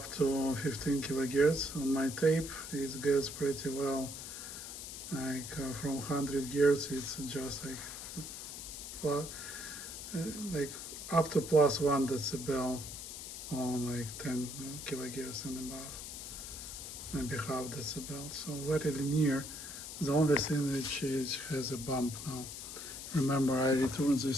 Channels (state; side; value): noise; left; hiss, 9 dB below the sound